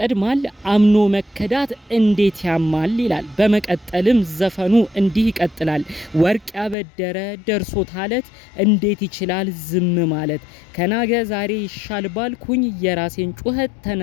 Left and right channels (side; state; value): right; drops out; at 6.8 s